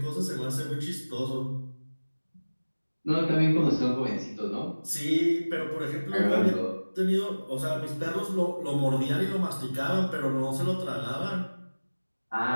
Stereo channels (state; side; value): inverted; both; correlation -1.00